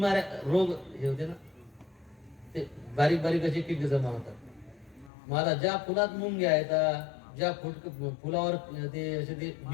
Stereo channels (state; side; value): drops out; right; at 5.1 s